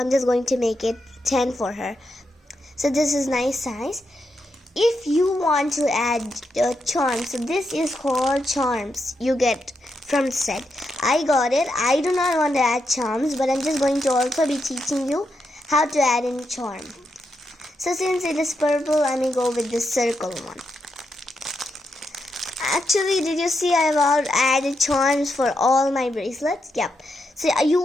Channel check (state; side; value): normal; both; correlation 0.83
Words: just going to make it 10 for her. So this is nice size. If you want to add charms, so this is called charms you get from the set. I got it. I do not want to add charms, but I'm just going to also be teaching you how to add in charm. So since it is purple, I'm going to go with this circle one. Actually, did you see I've added charms for all my bracelets? Yep. So